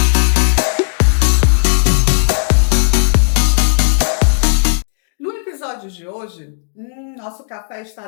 No episódio de hoje, nosso café está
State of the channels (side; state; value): right; silent; digital silence